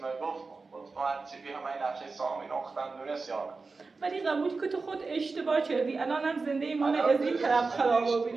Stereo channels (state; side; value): quieter; left; 4.1 dB